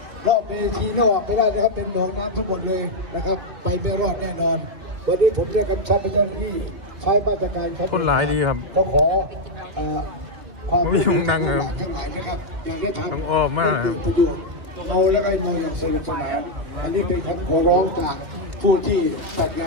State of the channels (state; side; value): late; left; 2.6 ms